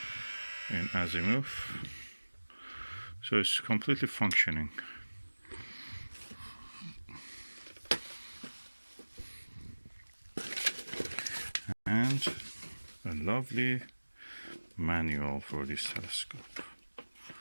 in azimuth, so it's completely functioning. And a lovely manual for this telescope.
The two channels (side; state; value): both; inverted; correlation -1.00